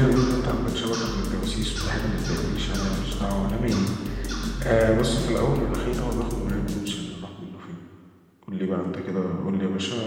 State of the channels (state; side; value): identical; both; correlation 1.00